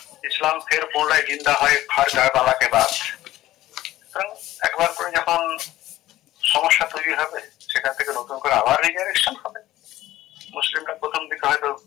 ইসলাম ফের পুনরায় জিন্দা হয় হর কারবালাকে বাদ। একবার করে যখন সমস্যা তৈরি হবে, সেখান থেকে নতুন করে আবার রিজারেকশন হবে। মুসলিমরা প্রথম দিকে হয়তো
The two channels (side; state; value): right; quieter; 15.2 dB